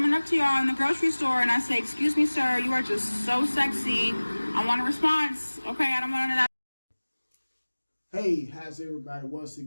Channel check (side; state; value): both; inverted; correlation -1.00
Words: up to y'all in the grocery store and I say, excuse me, sir, you are just so sexy, I want a response. Okay, I don't want none of that. Hey, how's everybody once